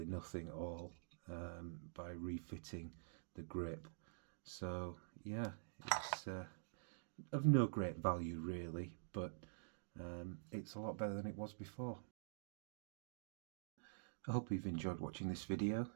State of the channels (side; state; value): left; silent; digital silence